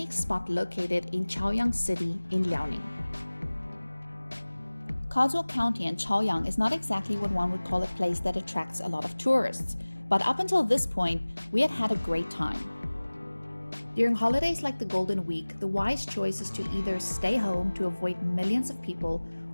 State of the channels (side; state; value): both; inverted; correlation -1.00